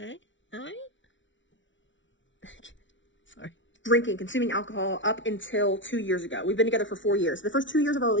Sorry. Drinking, consuming alcohol up until 2 years ago. We've been together for 4 years. The first 2 years of our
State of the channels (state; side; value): late; right; 0.55 ms